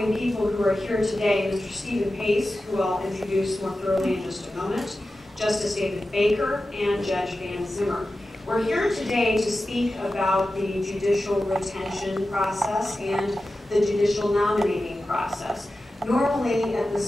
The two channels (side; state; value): both; normal; correlation 0.93